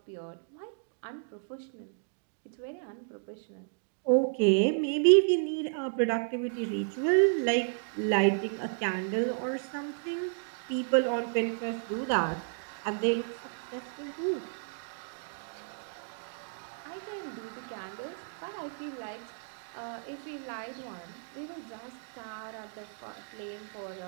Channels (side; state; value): left; silent; digital silence